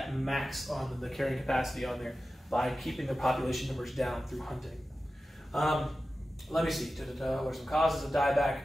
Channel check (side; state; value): both; normal; correlation 0.94